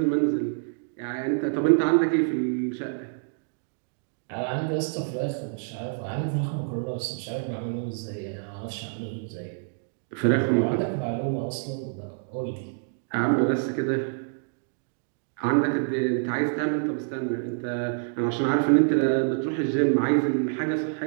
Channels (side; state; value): left; silent; digital silence